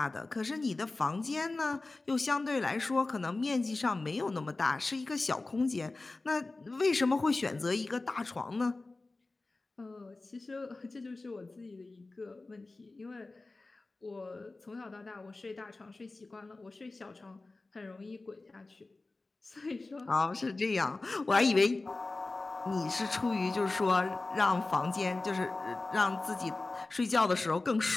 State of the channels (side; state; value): right; quieter; 3.3 dB